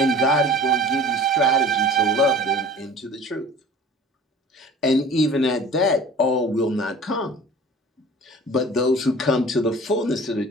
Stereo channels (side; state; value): both; normal; correlation 0.43